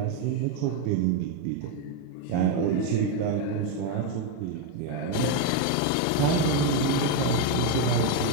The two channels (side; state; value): both; different; correlation 0.02